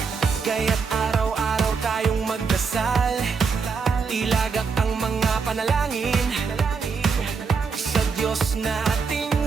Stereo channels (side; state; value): left; quieter; 5.3 dB